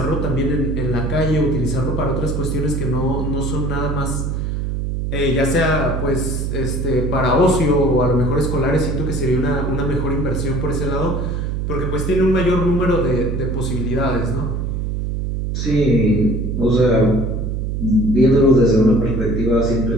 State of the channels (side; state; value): right; noise; hum, 2 dB below the sound